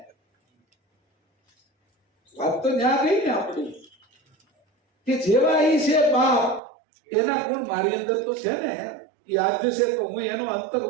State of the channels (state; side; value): drops out; left; at 6.6 s